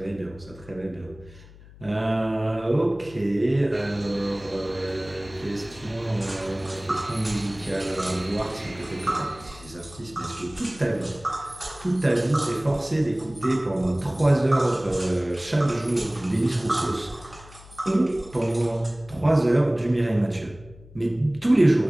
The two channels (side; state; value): left; noise; hum, 21 dB below the sound